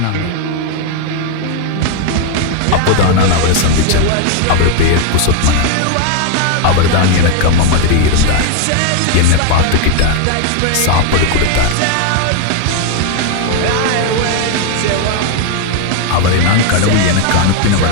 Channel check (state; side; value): different; both; correlation 0.01